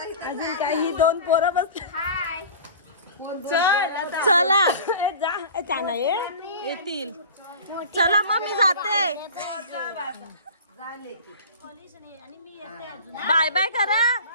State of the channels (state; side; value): inverted; both; correlation -0.38